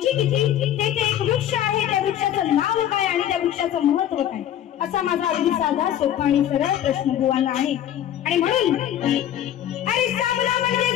किती, तेथे एक वृक्ष आहे, त्या वृक्षाचं नाव काय आणि त्या वृक्षाचं महत्व काय, असा माझा अगदी साधा सोपा आणि सरळ प्रश्न बुवांना आहे. आणि म्हणून अरे सामना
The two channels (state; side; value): quieter; right; 11.1 dB